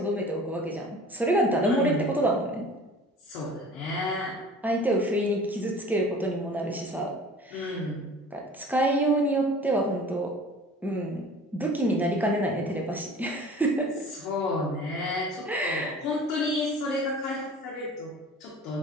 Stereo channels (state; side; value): normal; both; correlation 0.44